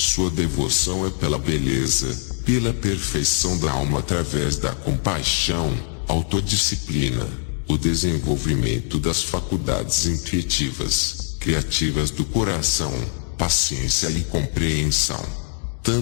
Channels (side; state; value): right; silent; digital silence